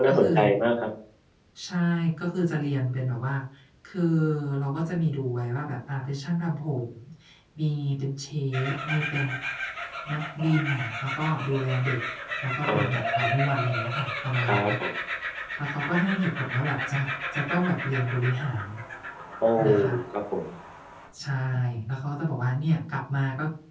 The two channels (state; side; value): identical; both; correlation 1.00